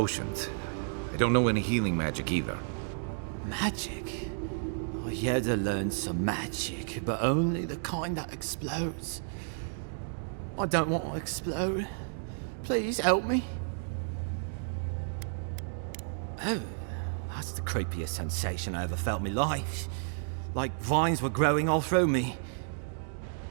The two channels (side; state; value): left; silent; digital silence